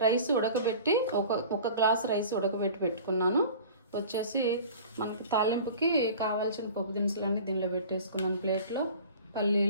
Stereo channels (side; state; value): both; inverted; correlation -0.41